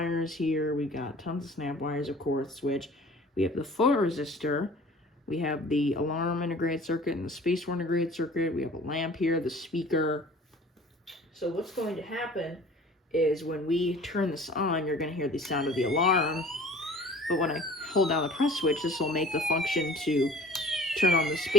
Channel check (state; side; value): normal; both; correlation 0.47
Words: here, we've got tons of snap wires, of course, switch, we have the photoresistor, we have the alarm integrated circuit and the space war integrated circuit. We have a lamp here, the speaker. So what's going to happen is when we turn this on, you're going to hear the sound of the alarm. But when I hold down the press switch, this will make the function to turn on the